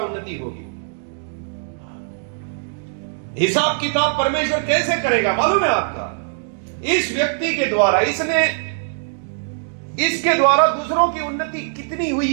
होगी। हिसाब किताब परमेश्वर कैसे करेगा मालूम है आपका? इस व्यक्ति के द्वारा, इसके द्वारा दूसरों की उन्नति कितनी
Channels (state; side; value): silent; left; digital silence